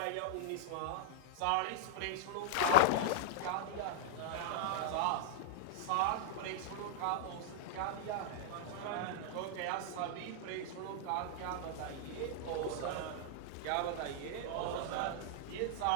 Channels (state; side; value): different; both; correlation -0.01